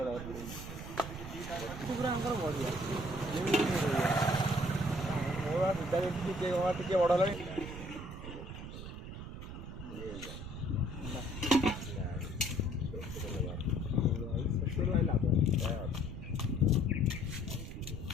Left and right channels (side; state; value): right; noise; rumble, 9 dB below the sound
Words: ଟିକେ ବଡ଼ ହେଲାଣି